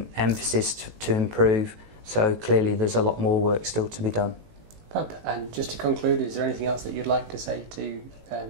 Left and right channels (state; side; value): late; left; 18 ms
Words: emphasis to improve. So clearly there's a lot more work still to be done. Fab. And just to conclude, is there anything else that you'd like to say to